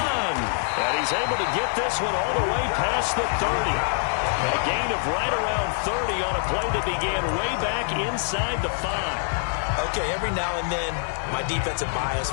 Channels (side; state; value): right; silent; 62 dB below the other